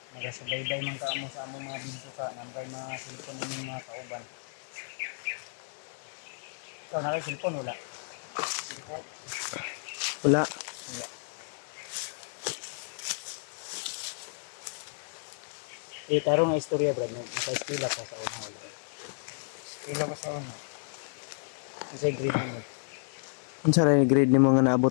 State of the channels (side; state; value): right; silent; digital silence